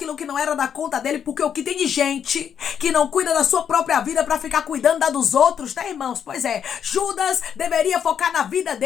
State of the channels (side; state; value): right; quieter; 8.2 dB